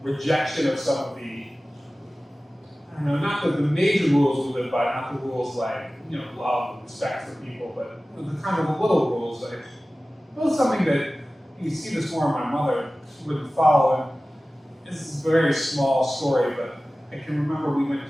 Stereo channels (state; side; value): normal; both; correlation 0.97